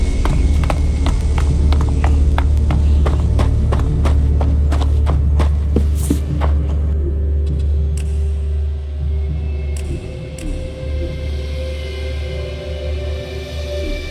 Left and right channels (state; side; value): identical; both; correlation 1.00